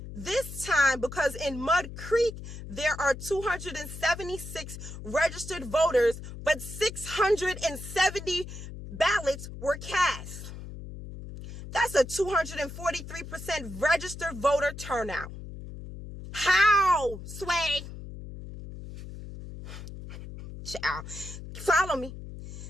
This time because in Mud Creek, there are 276 registered voters, but 670 ballots were cast. That's a 243% registered voter turnout. How, Sway? Child, follow me.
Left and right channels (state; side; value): noise; left; hum, 11 dB below the sound